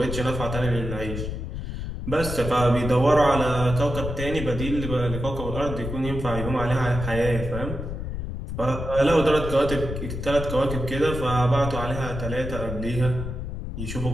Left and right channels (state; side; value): noise; left; rumble, 6 dB below the sound